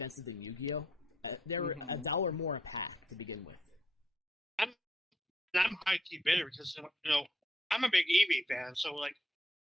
than Yu-Gi-Oh. They were $1 more a pack to begin with. I'm high key bitter because I'm a big Eevee fan, so like,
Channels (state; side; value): normal; both; correlation 0.72